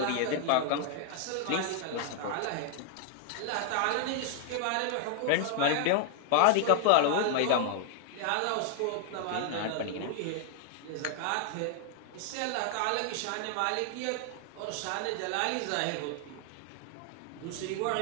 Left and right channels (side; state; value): both; different; correlation 0.00